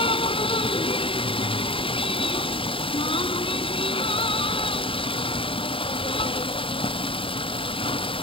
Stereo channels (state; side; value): late; right; 0.26 ms